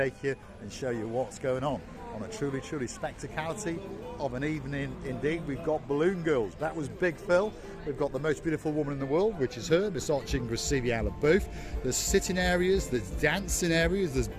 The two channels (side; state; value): both; identical; correlation 1.00